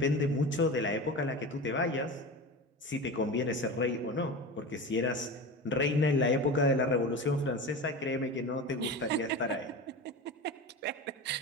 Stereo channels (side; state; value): both; normal; correlation 0.28